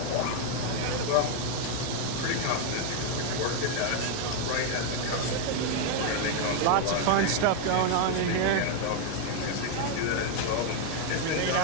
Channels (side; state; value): both; different; correlation 0.01